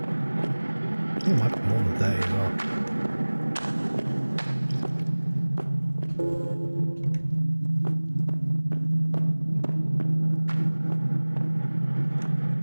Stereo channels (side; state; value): both; inverted; correlation -1.00